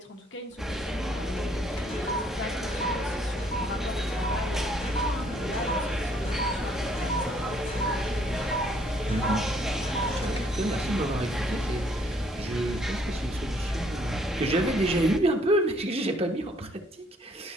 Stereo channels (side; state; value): both; normal; correlation 0.65